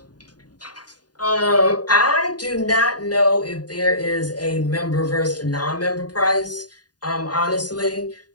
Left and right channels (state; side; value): late; right; 0.69 ms